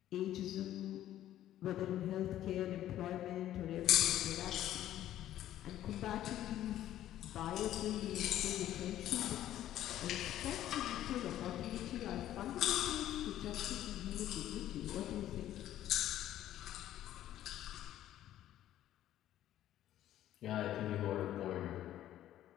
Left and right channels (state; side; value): quieter; right; 12.6 dB